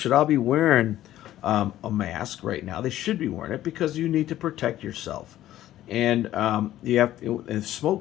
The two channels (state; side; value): quieter; right; 13.5 dB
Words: all be wearing a mask right now. They should be wearing it because you need to protect yourself. And you have if